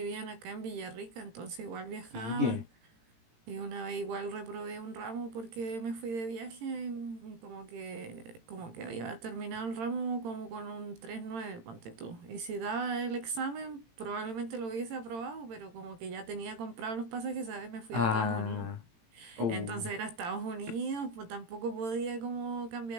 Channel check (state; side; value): late; left; 18 ms